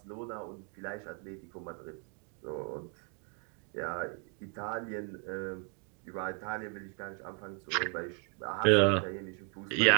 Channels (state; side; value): quieter; left; 34.7 dB